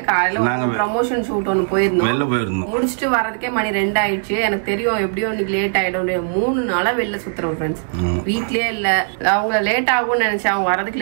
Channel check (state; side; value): silent; left; digital silence